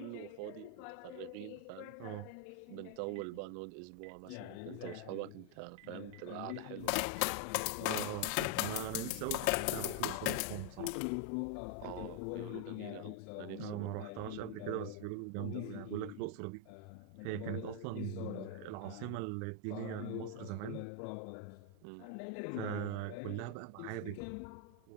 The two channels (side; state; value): both; different; correlation 0.00